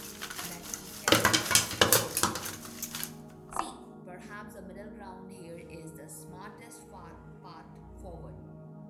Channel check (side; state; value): both; identical; correlation 1.00